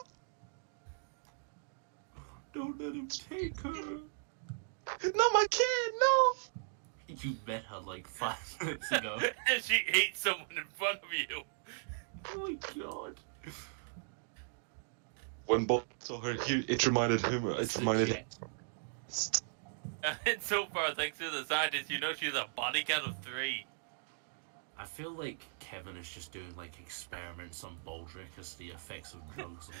Don't let him take her. Not my kid, no! You met her like 5 minutes ago. And she ate someone in front of you. Oh my god. When Bob saw her, it reminded him. It reminded him. And so far, thanks to the scientists, you know she's a body count of 3. I feel like Kevin is just doing like experiments on Baldric as the effects of drugs.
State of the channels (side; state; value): left; silent; digital silence